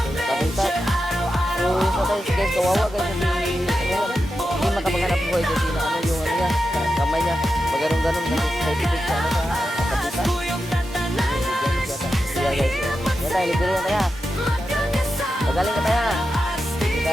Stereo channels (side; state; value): both; normal; correlation 0.89